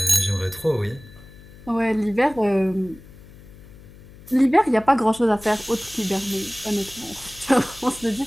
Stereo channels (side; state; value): left; noise; hum, 20 dB below the sound